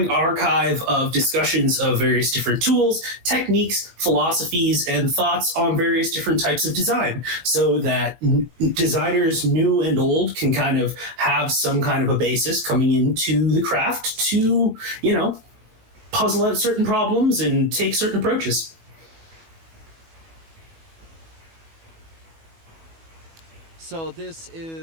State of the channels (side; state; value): left; late; 18 ms